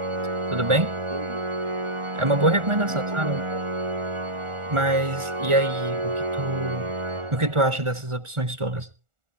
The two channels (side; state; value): left; late; 1.4 ms